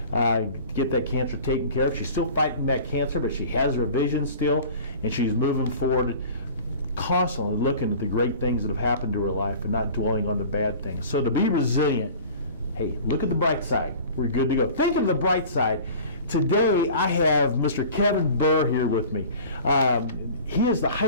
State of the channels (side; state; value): both; inverted; correlation -0.42